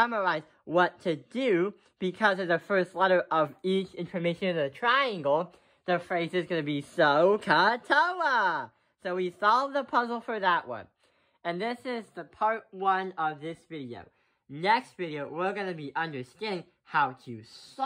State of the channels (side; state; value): both; identical; correlation 1.00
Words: what to do, because of the first letter of each information in the triangle, the phrase is going to be SOHCAHTOA. So we solved the puzzle for that one. And this is the part 1 of this video. Next video, we're going to be understanding how to